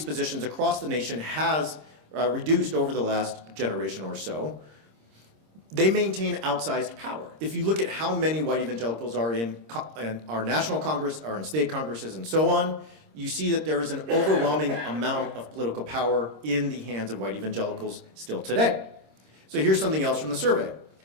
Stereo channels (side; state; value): left; late; 26 ms